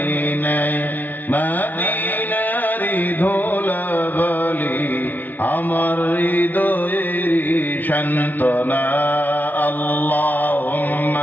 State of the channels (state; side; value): late; right; 0.082 ms